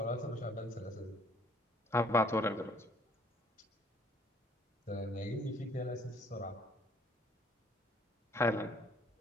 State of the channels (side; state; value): both; normal; correlation 0.61